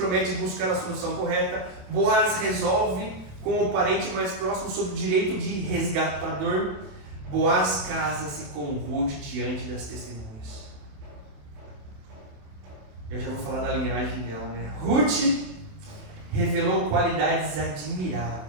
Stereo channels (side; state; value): left; late; 27 ms